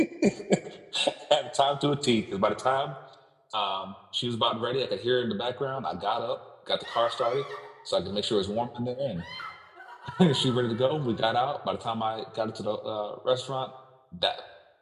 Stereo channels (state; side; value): identical; both; correlation 1.00